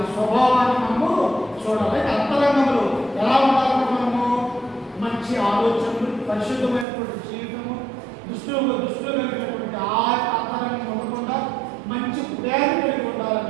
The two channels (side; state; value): left; drops out; at 6.9 s